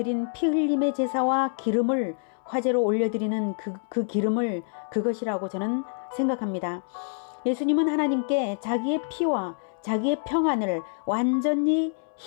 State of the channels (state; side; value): silent; right; 61 dB below the other